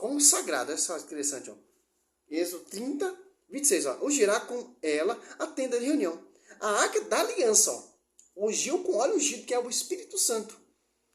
olha só que interessante. Ó. Êxodo 30, 26. Ó. Ungirá com ela a tenda de reunião. A Arca da Aliança, ó. Ungiu com óleo ungido, que é o Espírito Santo.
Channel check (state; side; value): identical; both; correlation 1.00